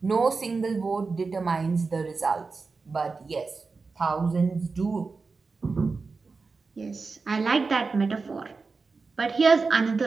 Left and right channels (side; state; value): left; quieter; 4.3 dB